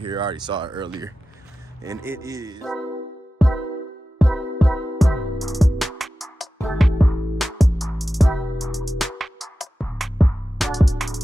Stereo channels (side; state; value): both; normal; correlation 0.94